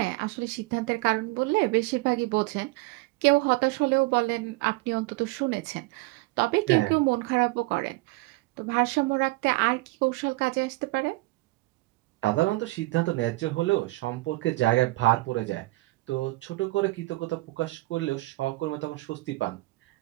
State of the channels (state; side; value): quieter; left; 21.9 dB